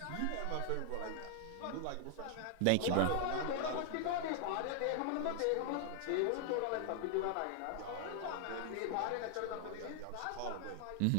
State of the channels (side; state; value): both; different; correlation 0.00